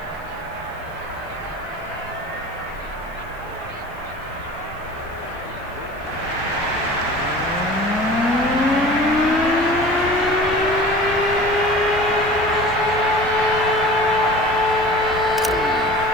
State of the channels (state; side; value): noise; right; hiss, 29 dB below the sound